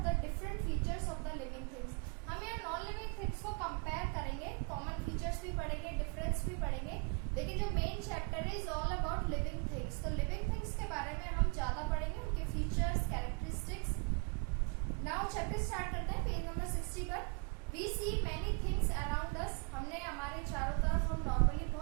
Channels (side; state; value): left; quieter; 34.9 dB